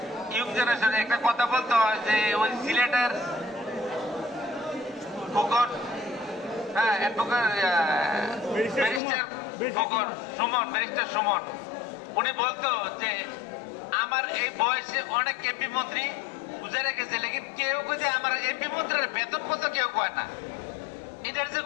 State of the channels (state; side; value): drops out; right; at 9.0 s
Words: ইউং জেনারেশন একটা কথা বলতে হয় যে ওই সিলেটের ফুকন, হ্যাঁ ব্যারিস্টার সুমন, উনি বলতো যে আমার এই বয়সে অনেক এমপি মন্ত্রী গুজারে গেছে, লেকিন কেউ যে আমার এমপি মন্ত্রীর বেতন কত কেউ কয় না, এটার যে